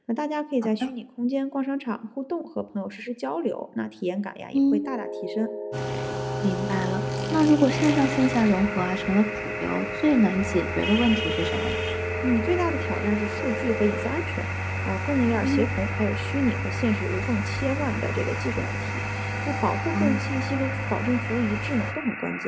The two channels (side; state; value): both; identical; correlation 1.00